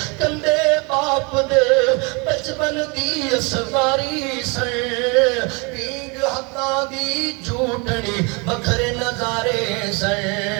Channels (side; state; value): left; quieter; 30.5 dB